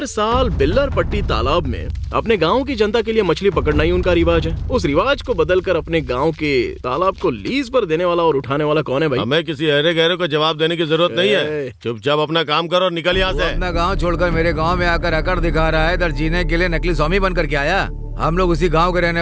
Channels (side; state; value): both; identical; correlation 1.00